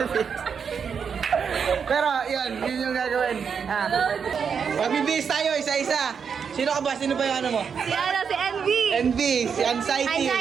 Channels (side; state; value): left; quieter; 6.6 dB